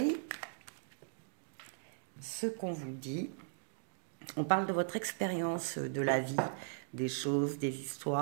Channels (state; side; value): silent; left; digital silence